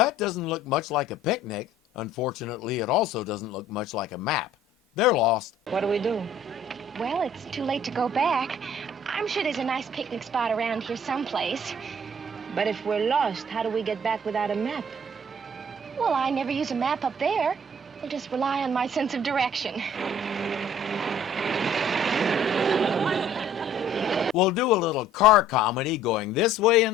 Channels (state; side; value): normal; both; correlation 0.55